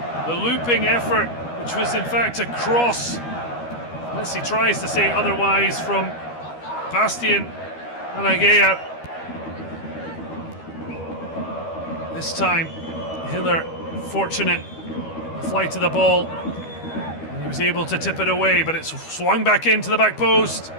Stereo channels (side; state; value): right; late; 12 ms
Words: The looping effort, which was in fact a cross, unless he tries to say otherwise, from Bastian Alagea. This time, Hiller fortunate flight of the ball. He was able to tip it away, but it swung back into the back post.